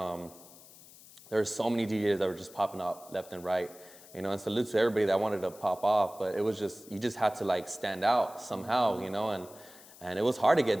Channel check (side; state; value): left; noise; hiss, 21 dB below the sound